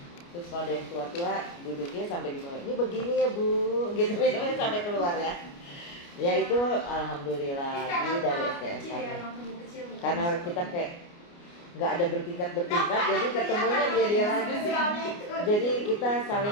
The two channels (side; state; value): right; late; 29 ms